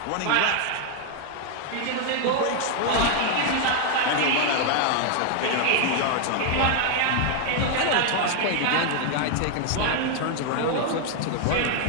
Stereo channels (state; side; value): different; both; correlation 0.00